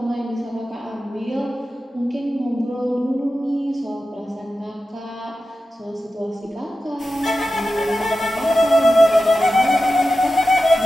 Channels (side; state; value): both; normal; correlation 0.92